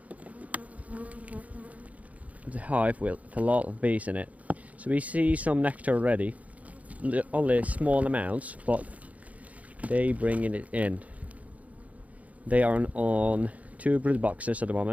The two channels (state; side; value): late; left; 0.070 ms